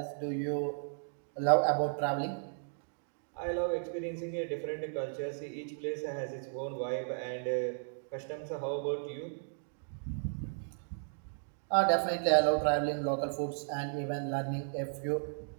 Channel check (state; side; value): silent; left; digital silence